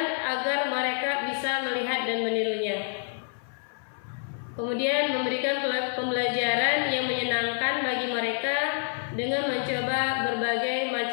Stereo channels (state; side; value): silent; right; 60 dB below the other